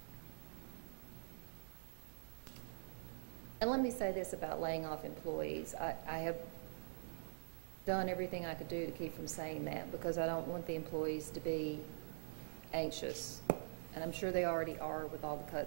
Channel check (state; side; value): silent; left; digital silence